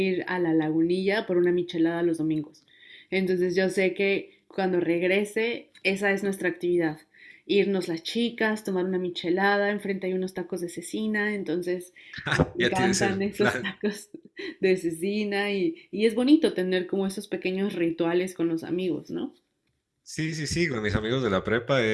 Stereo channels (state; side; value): identical; both; correlation 1.00